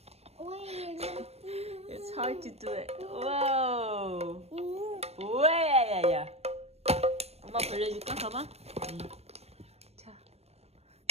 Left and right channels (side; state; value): left; late; 0.30 ms